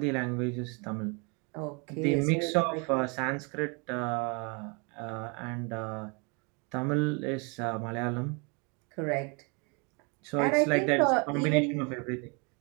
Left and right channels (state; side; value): quieter; left; 32.6 dB